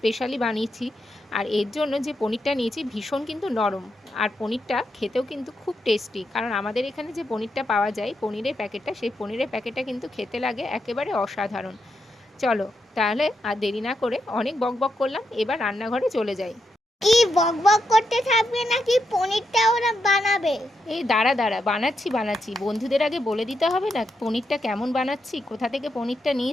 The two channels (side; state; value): both; normal; correlation 0.83